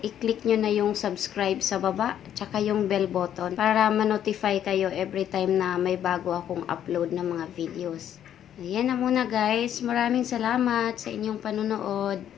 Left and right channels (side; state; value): right; quieter; 10.2 dB